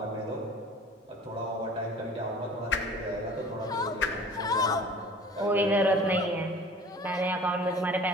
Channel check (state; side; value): normal; both; correlation 0.45